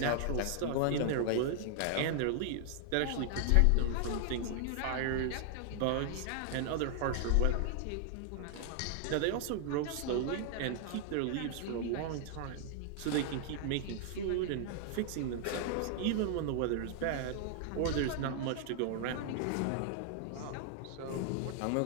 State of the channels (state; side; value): different; both; correlation 0.00